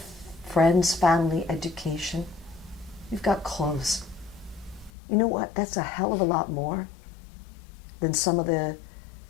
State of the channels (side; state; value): right; drops out; at 4.9 s